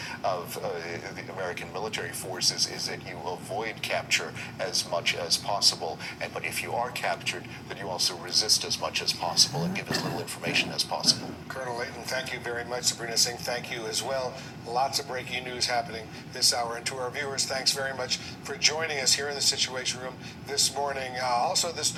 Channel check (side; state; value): both; identical; correlation 1.00